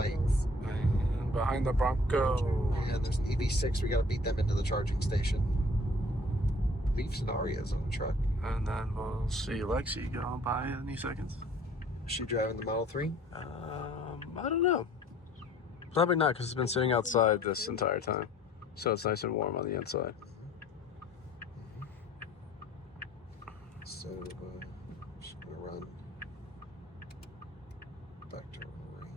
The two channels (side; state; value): both; normal; correlation 0.54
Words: And behind the Bronco. And there's an EV6. We got to beat them into the charging station. Leafs and Arias on the truck. And then we'll see Lexi going by any seconds. Is she driving the Model 3? I don't know. Probably not, because it's been sitting outside this entire time. So it's nice and warm on the inside. So, just going to run back to